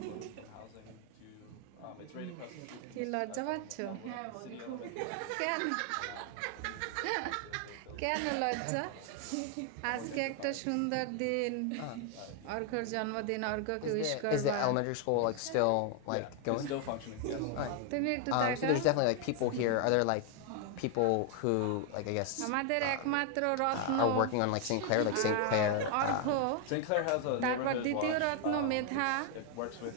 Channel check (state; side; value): different; both; correlation 0.00